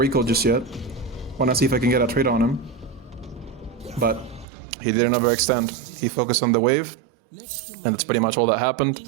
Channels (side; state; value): left; drops out; at 4.5 s